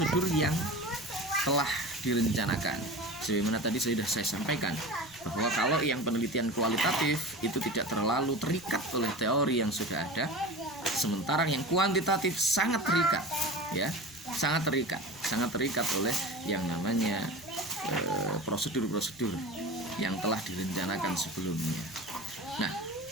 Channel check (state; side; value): noise; right; rumble, 27 dB below the sound